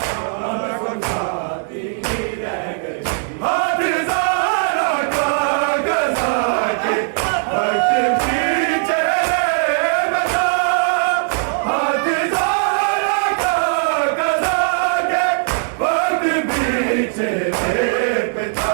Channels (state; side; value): silent; left; digital silence